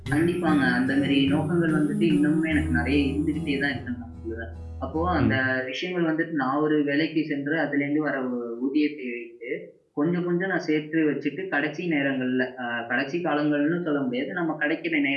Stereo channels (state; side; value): identical; both; correlation 1.00